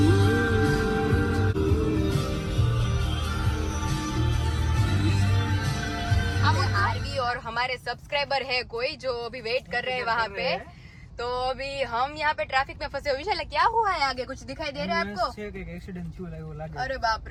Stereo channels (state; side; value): identical; both; correlation 1.00